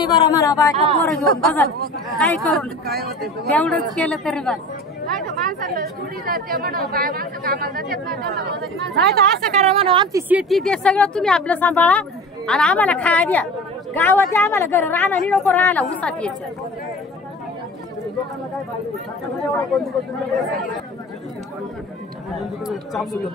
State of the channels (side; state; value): both; normal; correlation 0.37